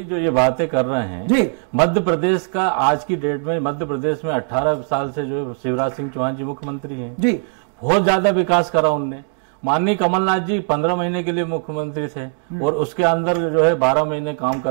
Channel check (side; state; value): left; silent; 66 dB below the other